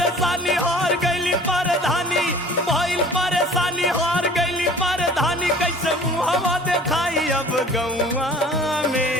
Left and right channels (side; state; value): both; normal; correlation 0.46